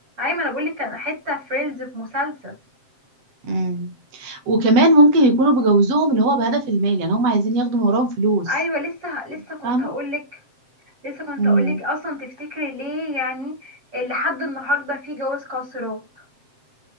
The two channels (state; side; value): late; left; 7.6 ms